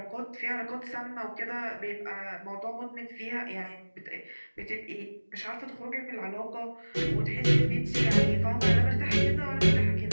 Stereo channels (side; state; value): both; inverted; correlation -1.00